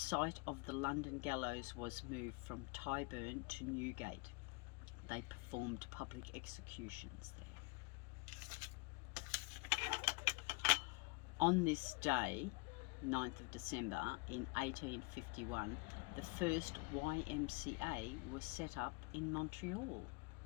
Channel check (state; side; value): quieter; right; 29.7 dB